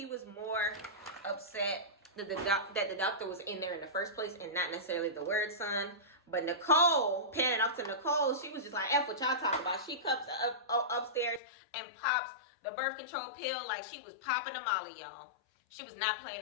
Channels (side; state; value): right; drops out; at 11.4 s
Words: was more upset that the doctor was in there in the first place and not necessarily the word son. But Nicole, panning off to Nicole, she was just like, F what y'all talking about. She comes upstairs and pops the birth control pill like she was popping a molly, y'all. She was not